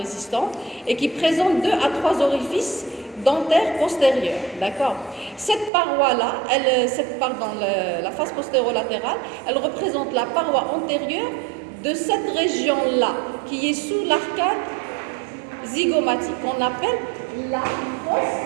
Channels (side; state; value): left; drops out; at 5.7 s